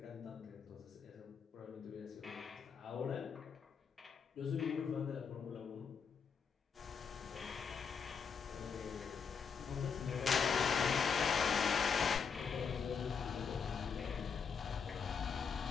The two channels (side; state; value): right; quieter; 6.3 dB